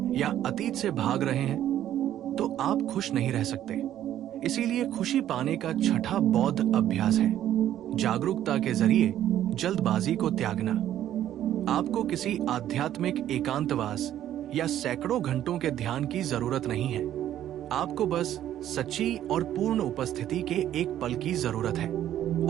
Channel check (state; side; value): quieter; left; 11.7 dB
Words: या अतीत से भाग रहे हैं तो आप खुश नहीं रह सकते। इसीलिए खुशी पाने का छठा बौद्ध अभ्यास है जागरूकता के जरिए जल्दबाजी को त्यागना। आपको किसी आध्यात्मिक एकांतवास या सैकड़ों घंटों के ध्यान की जरूरत नहीं है। आपको बस सच्ची और पूर्ण उपस्थिति के एक पल की जरूरत है।